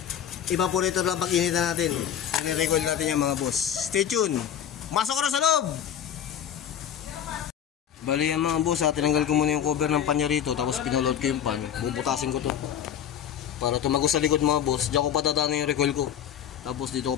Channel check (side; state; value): right; quieter; 9.4 dB